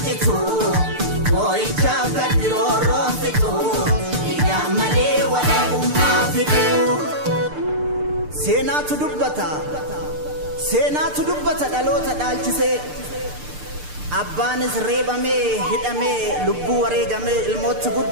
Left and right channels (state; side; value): late; left; 6.7 ms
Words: jitu boy chaka diroro fito yamale wala bumma fito seenaatu dubbata dhaloota dhaalchise abbaanis reebamee hidhamee lubbuu wareegamee ilmootti